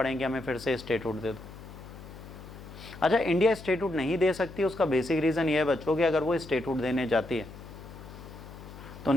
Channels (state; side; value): noise; left; hum, 15 dB below the sound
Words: हमें फिर से स्टेटहुड दे दो। अच्छा, इंडिया स्टेटहुड नहीं दे सकती, उसका बेसिक रीज़न ये है बच्चों कि अगर वो स्टेटहुड देने जाती है तो